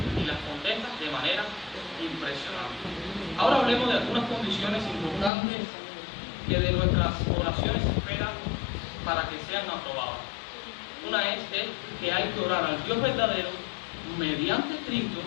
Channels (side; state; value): right; drops out; at 5.3 s